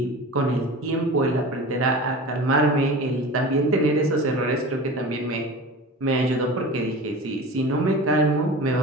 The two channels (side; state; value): both; normal; correlation 0.34